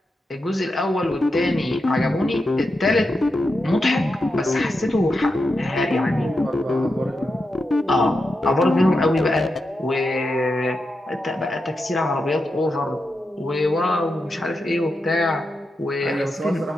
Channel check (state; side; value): normal; both; correlation 0.87